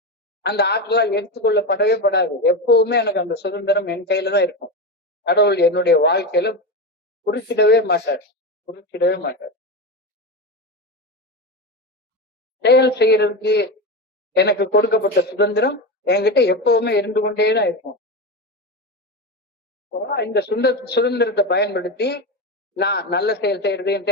அந்த ஆற்றலால் எடுத்துக்கொள்ளப்படவே படாது. எப்பவுமே எனக்கு அந்த சுதந்திரம் என் கையில தான் இருக்கும். கடவுள் என்னுடைய வாழ்க்கையில குறுக்கிடவே மாட்டார். செயல் செய்யறதுக்கு எனக்கு கொடுக்கப்பட்ட சுதந்திரம் என்கிட்ட எப்பவுமே இருந்து கொண்டேதான் இருக்கும். இந்த சுதந்திரத்தை பயன்படுத்தி நான் நல்ல செயல் செய்யறதையும்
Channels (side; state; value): both; normal; correlation 0.18